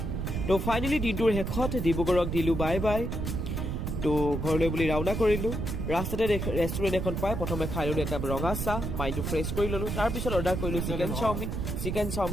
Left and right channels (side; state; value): right; noise; rumble, 3 dB below the sound